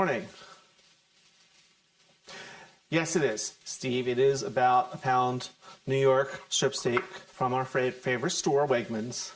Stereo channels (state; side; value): identical; both; correlation 1.00